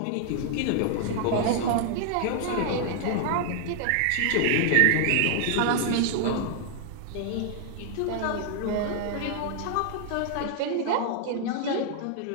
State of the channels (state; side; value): different; both; correlation 0.00